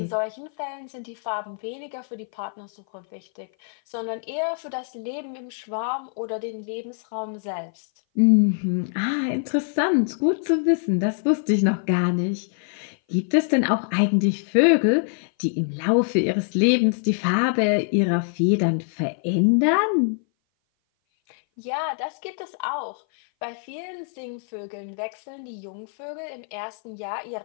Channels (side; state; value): right; silent; 58 dB below the other